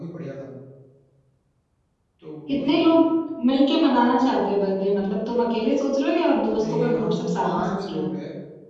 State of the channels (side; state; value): both; identical; correlation 1.00